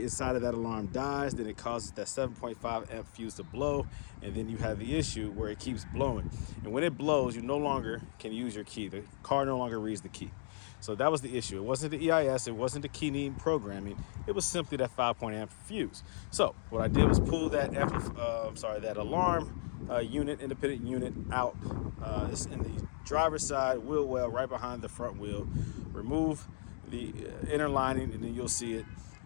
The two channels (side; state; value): right; silent; digital silence